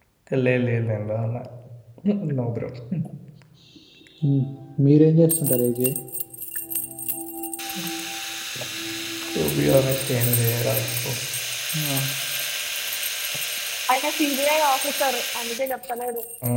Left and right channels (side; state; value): both; identical; correlation 1.00